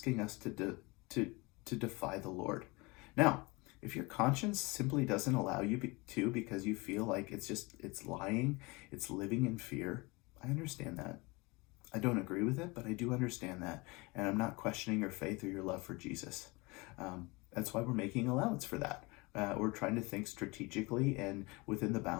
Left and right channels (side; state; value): right; quieter; 25.5 dB